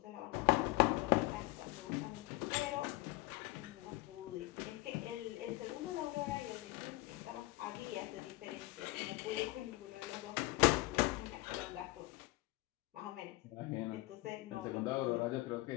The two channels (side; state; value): right; quieter; 20.6 dB